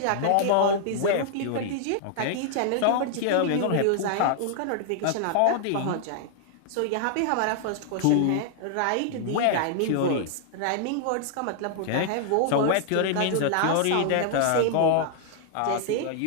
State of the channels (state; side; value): different; both; correlation -0.01